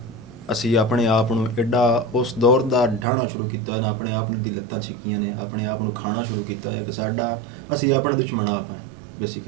ਅਸੀਂ ਆਪਣੇ ਆਪ ਨੂੰ ਐਡਾ ਉਸ ਦੌਰ ਦਾ ਢਾਣਾ ਸ਼ੁਰੂ ਕੀਤਾ ਨਾ, ਆਪਣੇ ਆਪ ਨੂੰ ਦੀ ਲੱਤਾਂ ਛਿੱਕੀਆਂ ਨੇ, ਆਪਣੇ ਆਪ ਨੂੰ ਖਾਣਾ ਸ਼ੁਰੂ ਕੀਤਾ ਹੈ ਕਿ ਸਾਡਾ ਅਸੀਂ ਆਪਣੇ ਦੁਸ਼ਮਣ ਆਪ ਹਾਂ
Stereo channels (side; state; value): left; drops out; at 3.1 s